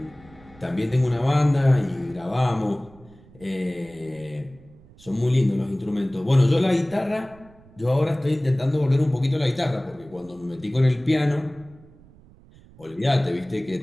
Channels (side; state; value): right; noise; rumble, 25 dB below the sound